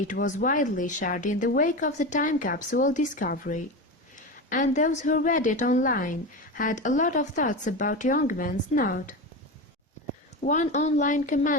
was widely shared in the wake of the time capsule discovery. And those who read it online had a lot of thoughts about Youngman's note. One online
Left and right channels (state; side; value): normal; both; correlation 0.22